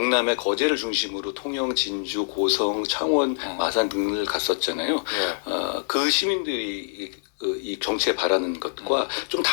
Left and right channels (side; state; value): right; silent; digital silence